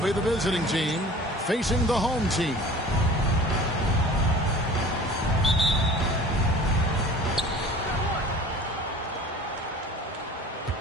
the visiting team facing the home team.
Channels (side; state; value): both; normal; correlation 0.44